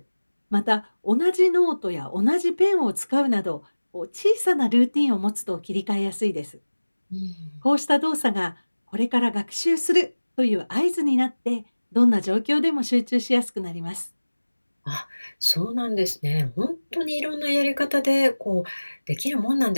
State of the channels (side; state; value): both; inverted; correlation -1.00